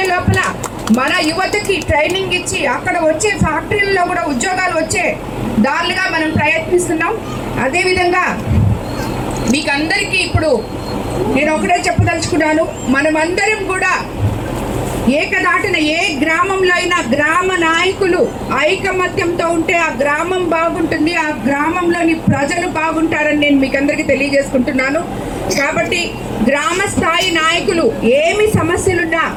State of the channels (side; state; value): both; identical; correlation 1.00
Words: లోపల మన యువతకి ట్రైనింగ్ ఇచ్చి అక్కడ వచ్చే ఫ్యాక్టరీలలో కూడా ఉద్యోగాలు వచ్చే దారులుగా మనం ప్రయత్నిస్తున్నాం. అదేవిధంగా మీకు అందరికీ ఇప్పుడు నేను ఒకటే చెప్పదలుచుకున్నాను, మనమందరం కూడా ఏకదాటిన ఏ గ్రామంలో అయినా గ్రామ నాయకులు ఐకమత్యంతో ఉంటే ఆ గ్రామం బాగుంటుంది, ఆ గ్రామంలోని ప్రజలు బాగుంటారని నేను మీకు అందరికీ తెలియజేసుకుంటున్నాను. కాబట్టి గ్రామ స్థాయి నాయకులు ఏమి సమస్యలున్నా